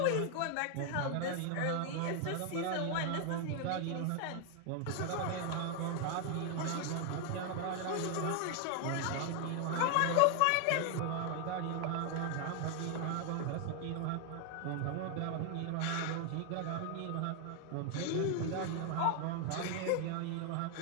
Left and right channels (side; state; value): both; different; correlation 0.00